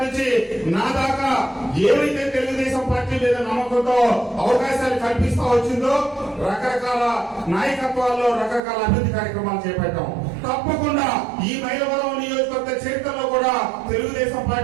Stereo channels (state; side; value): drops out; left; at 8.6 s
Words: నుంచి నా దాకా ఏవైతే తెలుగుదేశం పార్టీ మీద నమ్మకంతో అవకాశాలు కల్పిస్తూ వచ్చిందో రకరకాల నాయకత్వాల్లో రకరకాల అభివృద్ధి కార్యక్రమాలు చేపట్టాం. తప్పకుండా ఈ మైలవరం నియోజకవర్గ చరిత్రలో కూడా తెలుగుదేశం